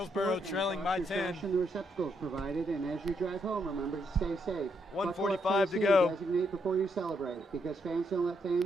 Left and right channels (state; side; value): normal; both; correlation 0.77